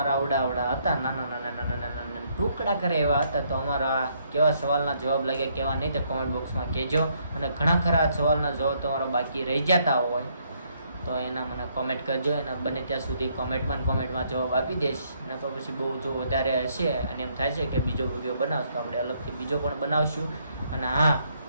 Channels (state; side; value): inverted; both; correlation -0.70